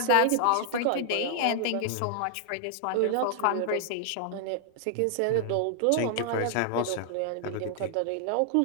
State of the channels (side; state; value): both; different; correlation 0.00